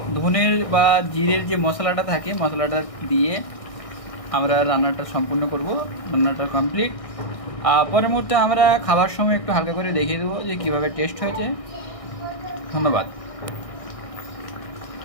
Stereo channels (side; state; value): right; late; 1.6 ms